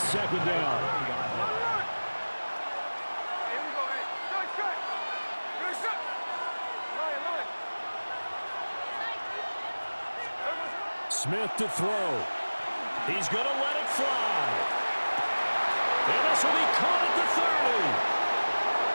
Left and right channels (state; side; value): inverted; both; correlation -1.00